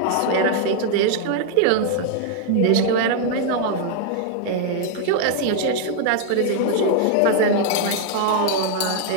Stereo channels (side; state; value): both; different; correlation 0.00